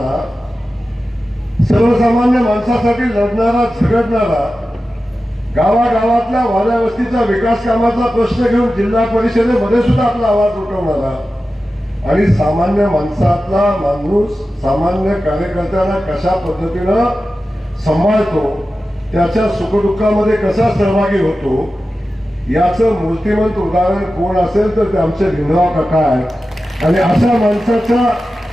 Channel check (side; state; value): both; normal; correlation 0.93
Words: सर्वसामान्य माणसासाठी लढणारा झगडणारा, गावागावातल्या वाड्या वस्तीचा विकास कामाचा प्रश्न घेऊन जिल्हा परिषदेमध्ये सुद्धा आपला आवाज उठवणारा आणि सामान्य माणसातला माणूस सामान्य कार्यकर्त्यांना कशा पद्धतीनं सांभाळतो, त्याच्या सुखदुःखामध्ये कसा सहभागी होतो, याचं मूर्तिमंत उदाहरण कोण असेल तर ते आमचे भिमराव काका आहेत. आणि अशा माणसाच्या